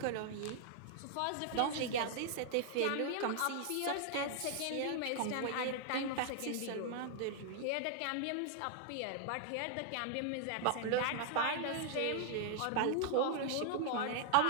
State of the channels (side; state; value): both; different; correlation -0.01